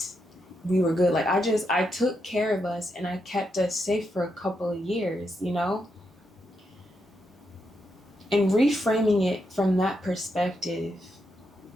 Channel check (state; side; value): normal; both; correlation 0.82